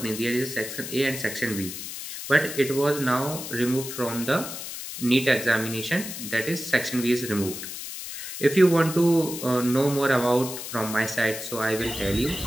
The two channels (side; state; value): left; noise; hiss, 8 dB below the sound